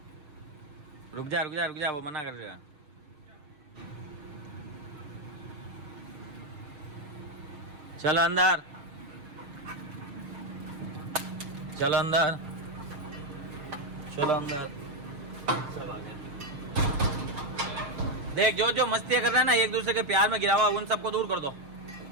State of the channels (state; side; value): late; left; 6.6 ms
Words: रुक जा रुक जा रुक जा, वो मना कर रहा है। चलो अंदर, चलो अंदर, चलो अंदर। देख जो जो मस्तियाँ कर रहे हैं ना, एक दूसरे के प्यार में गिरा हुआ, उन सबको दूर कर दो।